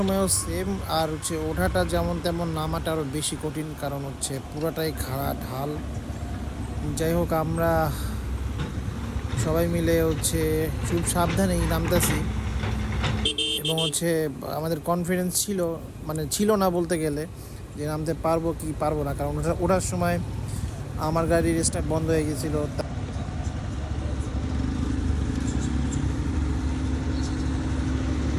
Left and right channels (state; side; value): identical; both; correlation 1.00